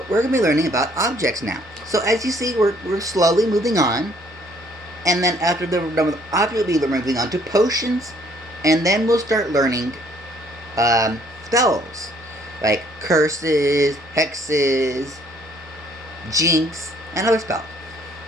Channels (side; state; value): both; normal; correlation 0.63